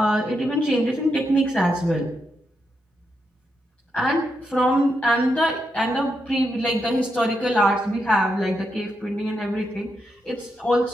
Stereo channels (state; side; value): normal; both; correlation 0.83